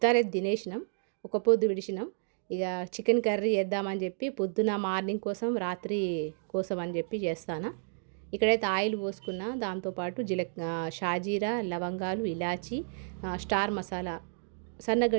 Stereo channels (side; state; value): left; silent; digital silence